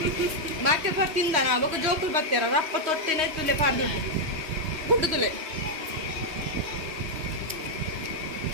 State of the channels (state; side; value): late; left; 3.1 ms